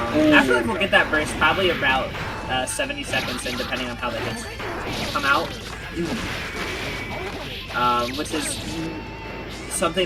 will get that burst probably about 70 seconds in, depending on how the hits come out. Which is something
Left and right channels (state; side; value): identical; both; correlation 1.00